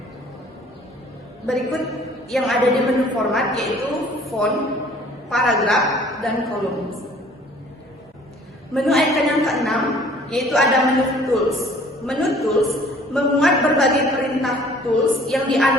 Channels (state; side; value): normal; both; correlation 0.53